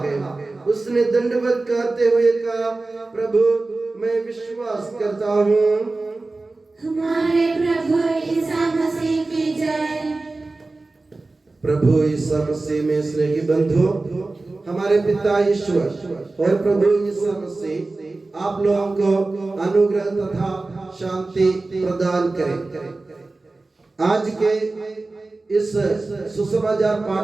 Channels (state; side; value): quieter; left; 3.3 dB